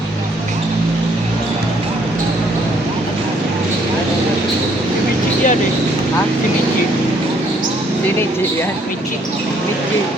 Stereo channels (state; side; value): normal; both; correlation 0.66